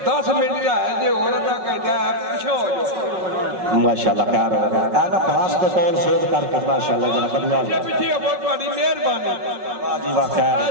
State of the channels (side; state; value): left; late; 5.4 ms